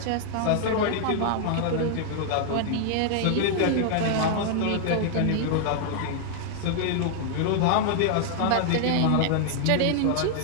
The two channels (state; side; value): different; both; correlation -0.01